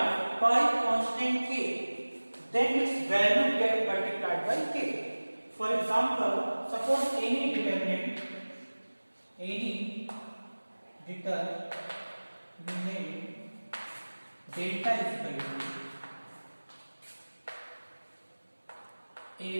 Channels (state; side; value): inverted; both; correlation -1.00